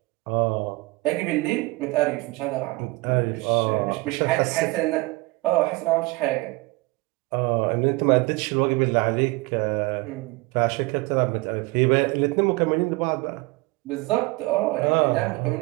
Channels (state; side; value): quieter; left; 23.2 dB